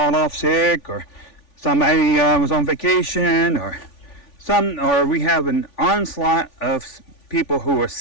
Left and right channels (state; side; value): late; right; 3.5 ms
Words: sick, or somebody was on vacation, or we have an onslaught of people who are